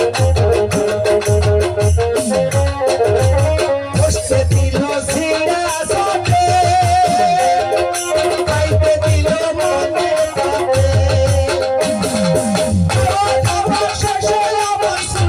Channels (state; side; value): identical; both; correlation 1.00